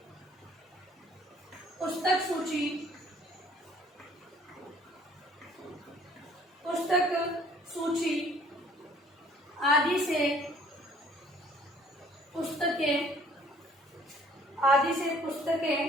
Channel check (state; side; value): normal; both; correlation 0.57